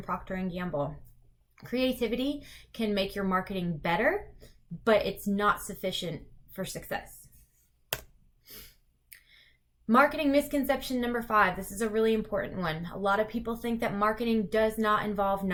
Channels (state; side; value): identical; both; correlation 1.00